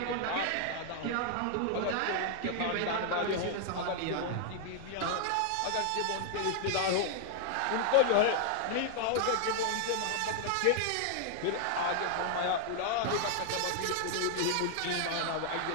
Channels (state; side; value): different; both; correlation -0.01